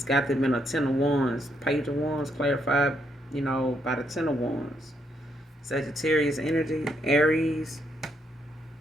got them in a 10 of wands. Page of wands clarified, by the 10 of wands. Sagittarius energy, Aries,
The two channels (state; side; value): normal; both; correlation 0.75